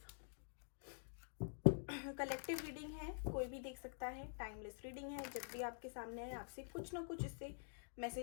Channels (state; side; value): silent; right; digital silence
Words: Collective reading है, कोई भी देख सकता है. टाइमलेस रीडिंग है, जब भी आपके सामने है आपसे कुछ ना कुछ इससे